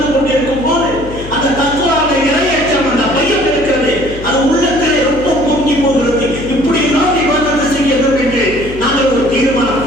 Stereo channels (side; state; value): left; noise; hum, 13 dB below the sound